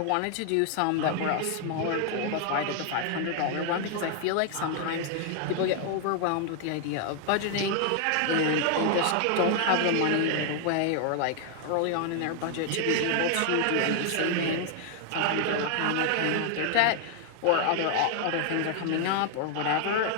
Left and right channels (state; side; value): different; both; correlation 0.00